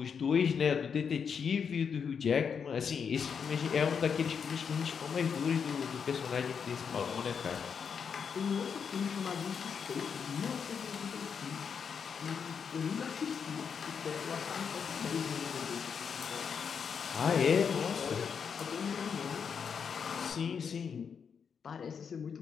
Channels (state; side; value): quieter; right; 6.6 dB